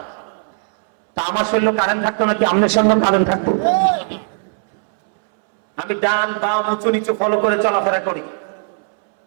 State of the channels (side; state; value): left; silent; 67 dB below the other